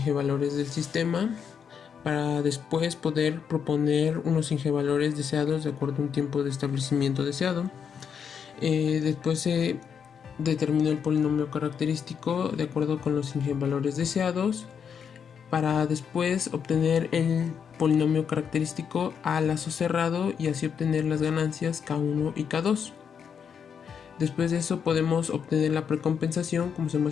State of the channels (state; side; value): quieter; right; 7.2 dB